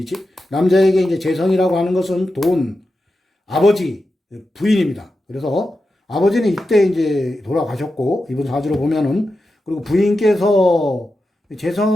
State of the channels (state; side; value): normal; both; correlation 0.90